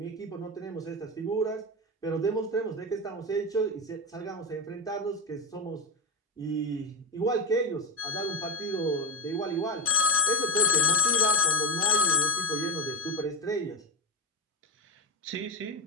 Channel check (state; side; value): normal; both; correlation 0.12